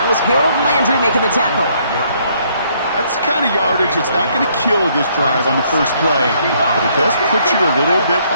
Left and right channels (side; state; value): both; inverted; correlation -0.67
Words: was Harold Landry making the tackle. That's the kind of yardage that's not going to kill this drive on the first play, but it does put you a little bit